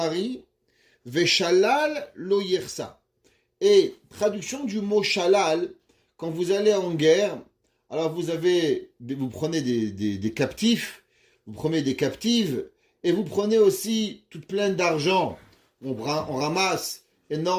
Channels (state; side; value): identical; both; correlation 1.00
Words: Veshalal lo yersa. Et traduction du mot shalal, quand vous allez en guerre, alors vous prenez des captifs, vous prenez des captives, et vous prenez aussi toute pleine d'argent. On ramasse